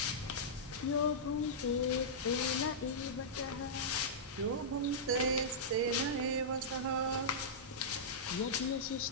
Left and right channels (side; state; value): both; normal; correlation -0.12